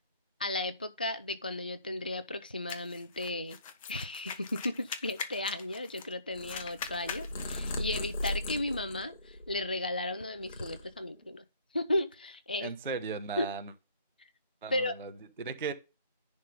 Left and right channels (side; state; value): both; inverted; correlation -0.57